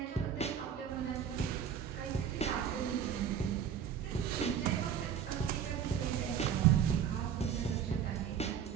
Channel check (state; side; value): quieter; left; 8.5 dB